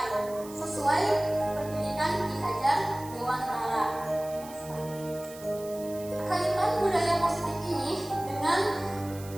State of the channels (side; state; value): right; noise; hiss, 18 dB below the sound